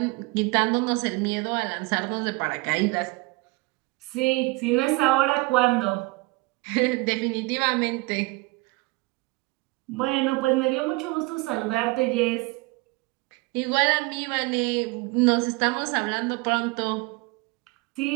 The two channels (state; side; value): quieter; left; 25.2 dB